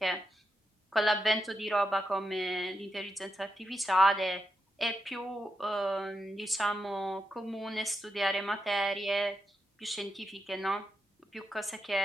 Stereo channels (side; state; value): both; normal; correlation 0.86